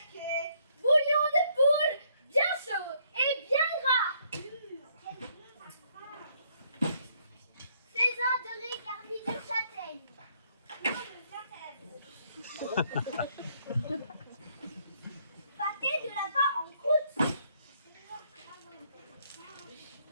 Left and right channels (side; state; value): both; inverted; correlation -0.69